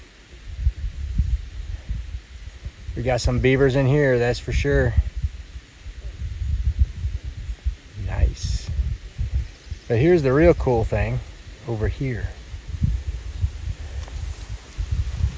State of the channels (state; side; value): identical; both; correlation 1.00